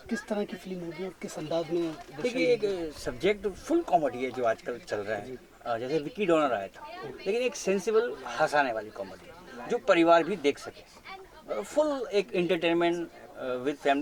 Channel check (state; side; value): identical; both; correlation 1.00